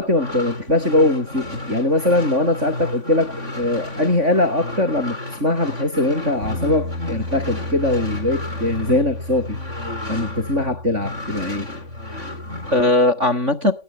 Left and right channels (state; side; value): late; left; 3.5 ms